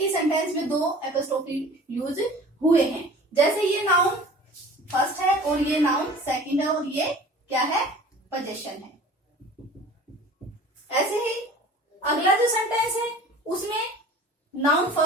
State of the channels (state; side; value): normal; both; correlation 0.44